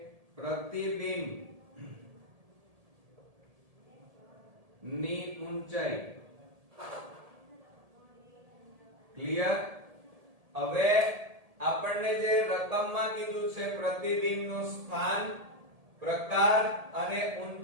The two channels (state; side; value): late; left; 1.7 ms